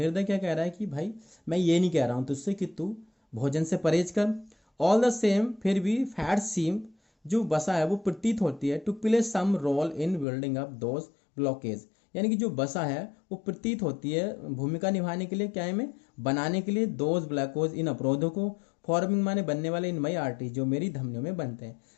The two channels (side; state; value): right; drops out; at 10.2 s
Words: क्या कह रहा है कि भाई मैं ये नहीं कह रहा हूँ तुझसे कि तू भोजन से परहेज कर, ऑल द सेम फिर भी फैट सीम, जो वसा है वो प्रतीत होती है, to play some role in building up those blockage, यानी कि जो वसा है वो प्रतीत होती है भूमिका निभाने के लिए, क्या है, में बनाने के लिए, दोज ब्लैकोज, इन अवरोधों को, फॉर्मिंग माने बनने वाले, इन मई आर्टरी, जो मेरी धमनियों में बनते हैं।